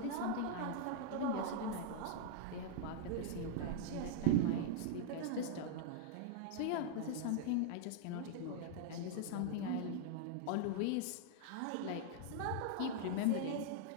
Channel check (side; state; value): both; different; correlation -0.01